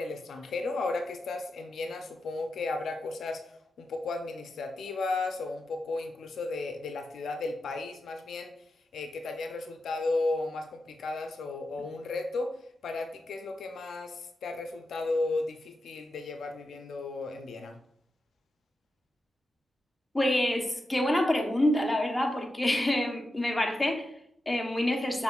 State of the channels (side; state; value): both; normal; correlation 0.89